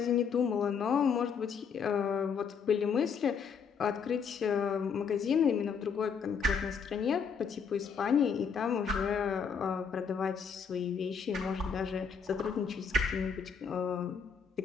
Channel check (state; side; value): quieter; right; 6.2 dB